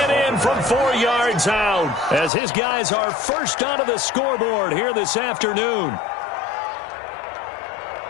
in from 4 yards out as his guys are first onto the scoreboard here this afternoon.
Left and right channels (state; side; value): drops out; right; at 2.3 s